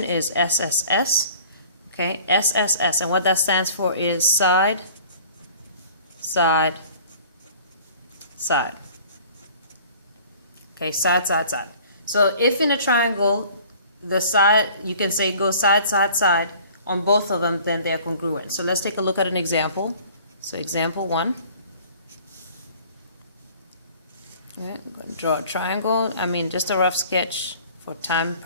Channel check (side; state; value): both; inverted; correlation -0.49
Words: is SSS. Okay, SSS, and what that stands for is side, side, side. Okay, side, side, side. So if in a triangle, the side, you can say go side, side, side on both of them, then they're congruent. So let's take a look at an example. So example 1. Yeah, I'm going to draw a triangle. I mean, just a rough sketch for time